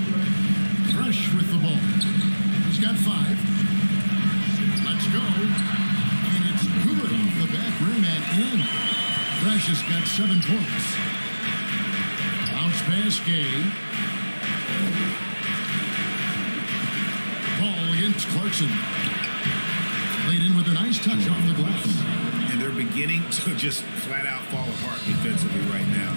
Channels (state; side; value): inverted; both; correlation -1.00